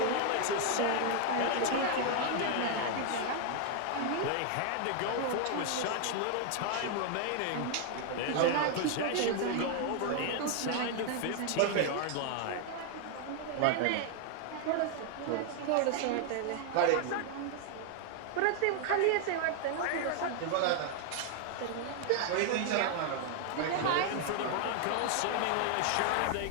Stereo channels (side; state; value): both; different; correlation 0.00